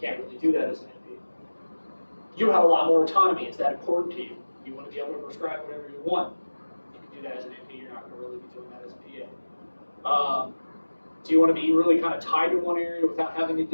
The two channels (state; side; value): inverted; both; correlation -1.00